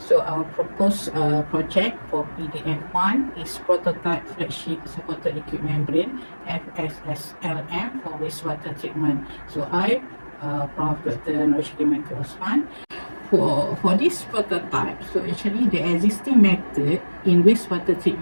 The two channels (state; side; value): inverted; both; correlation -1.00